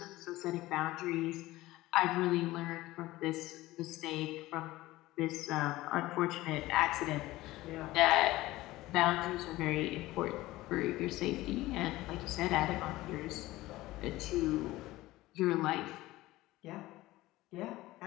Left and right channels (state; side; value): quieter; right; 17.8 dB